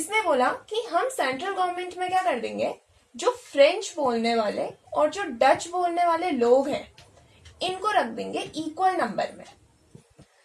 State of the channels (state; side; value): identical; both; correlation 1.00